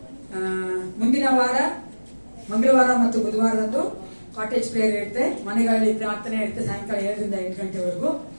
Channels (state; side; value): inverted; both; correlation -1.00